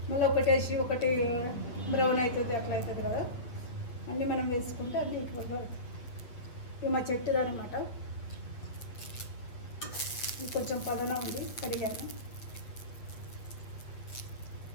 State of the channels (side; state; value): right; late; 8.5 ms